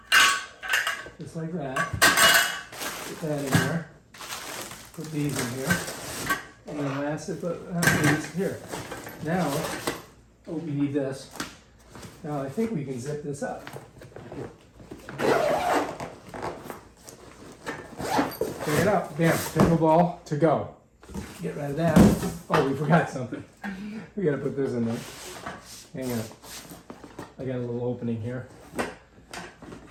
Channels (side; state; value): both; identical; correlation 1.00